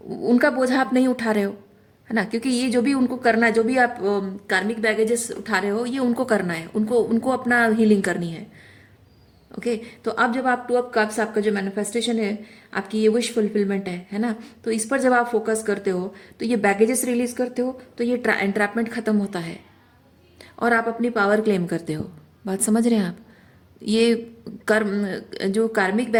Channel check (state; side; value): identical; both; correlation 1.00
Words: उनका बोझा आप नहीं उठा रहे हो, है ना। क्योंकि ये जो भी उनको करना है, जो भी आप कार्मिक बैगेजेस उठा रहे हो, ये उनको करना है, उनको उनको अपना हीलिंग करनी है। ओके, तो अब जब आप टू ऑफ कप्स, आपका जो मैनिफेस्टेशन है, आपकी ये विश फुलफिलमेंट है ना, तो इस पर जब आप फोकस करते हो, तो ये बैगेजेस रिलीज करते हो, तो ये एंट्रैपमेंट खत्म होता है और आप अपनी पावर क्लेम करते हो। बात समझ रहे हैं आप? ये कर्म, जो कार्मिक